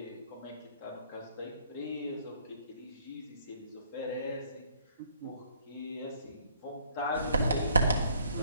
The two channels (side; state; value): both; inverted; correlation -0.62